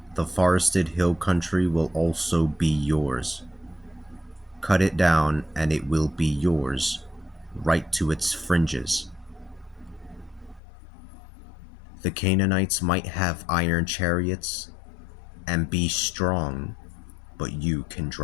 The forested hill country will also be yours. Cut it down, and it will be yours, right to its fringes. The Canaanites might have iron chariots and be strong, but you can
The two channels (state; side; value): drops out; right; at 10.6 s